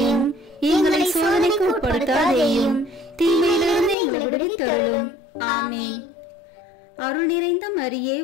எங்களை சோதனைக்கு உட்படுத்தாதேயும், தீமையிலிருந்து எங்களை விடுவித்தருளும். ஆமேன். அருள் நிறைந்த மரியே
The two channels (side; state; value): right; drops out; at 4.0 s